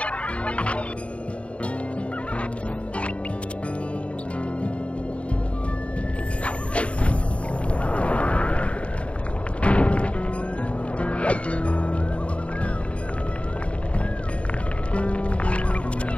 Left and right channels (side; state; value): right; late; 0.062 ms